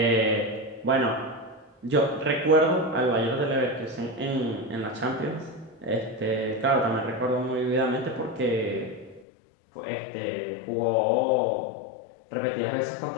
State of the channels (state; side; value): drops out; right; at 9.2 s